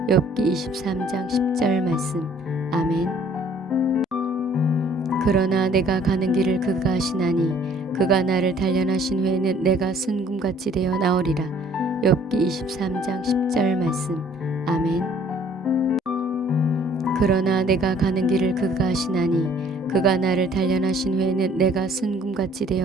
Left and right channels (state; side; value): normal; both; correlation 0.58